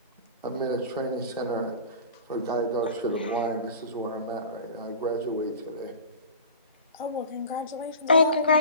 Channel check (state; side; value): inverted; both; correlation -0.37